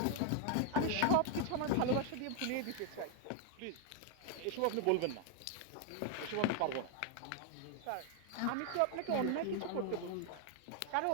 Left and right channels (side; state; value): both; different; correlation 0.01